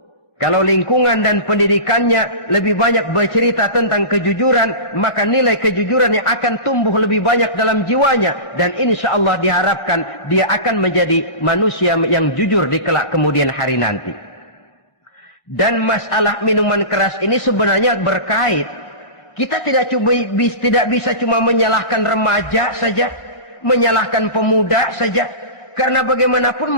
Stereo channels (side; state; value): right; late; 1.7 ms